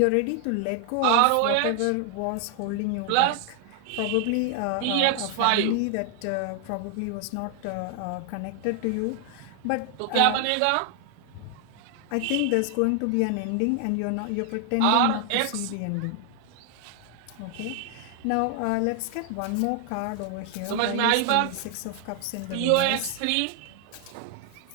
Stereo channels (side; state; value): both; different; correlation 0.00